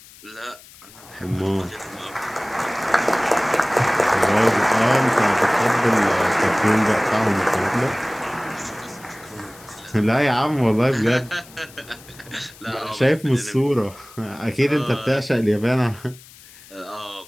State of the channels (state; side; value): noise; left; hiss, 22 dB below the sound